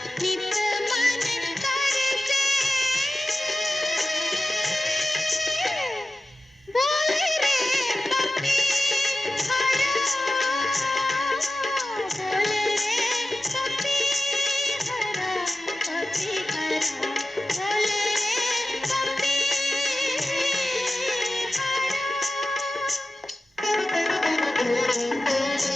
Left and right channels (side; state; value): both; normal; correlation 0.94